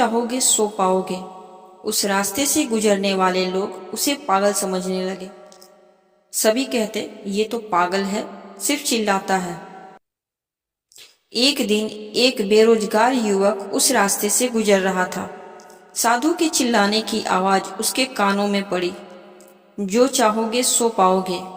सो पाओगे। उस रास्ते से गुजरने वाले लोग उसे पागल समझने लगे। सभी कहते, ये तो पागल है, सिर्फ चिल्लाता है। एक दिन एक बेरोजगार युवक उस रास्ते से गुजर रहा था। साधु के चिल्लाने की आवाज उसके कानों में पड़ी, जो चाहोगे सो पाओगे।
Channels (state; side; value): identical; both; correlation 1.00